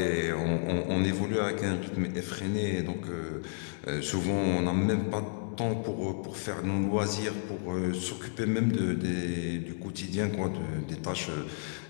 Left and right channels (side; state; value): right; silent; digital silence